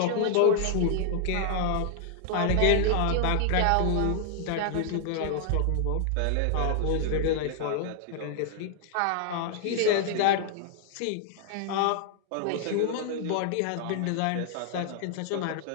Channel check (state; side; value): different; both; correlation 0.00